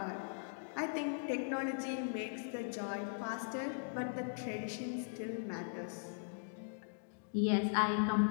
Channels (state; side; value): silent; right; digital silence